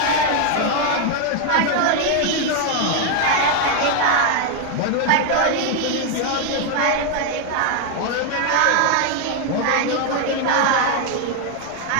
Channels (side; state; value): both; different; correlation 0.01